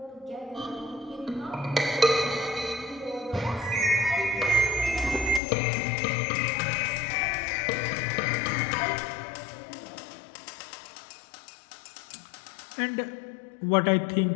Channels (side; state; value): right; drops out; at 5.4 s